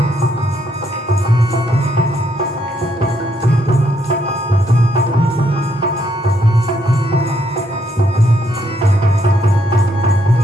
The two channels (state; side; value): normal; both; correlation 0.74